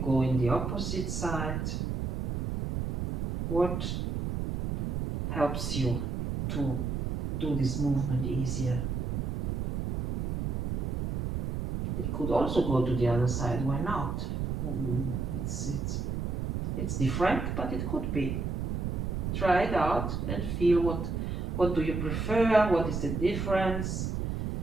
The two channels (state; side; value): noise; right; rumble, 1 dB below the sound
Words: go in the opposite side? What helps you to do this movement easier? It could also go to the other side, why not? It's different, but it could be. Try it out and feel what do you prefer, what is the difference